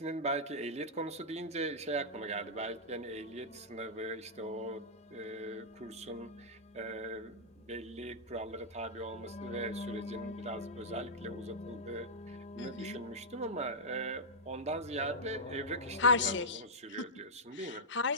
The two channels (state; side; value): normal; both; correlation -0.09